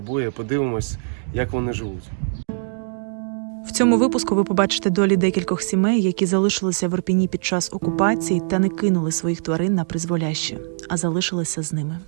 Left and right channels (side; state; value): left; silent; digital silence